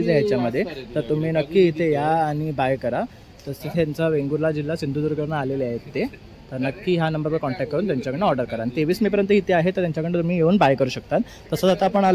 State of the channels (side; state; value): both; identical; correlation 1.00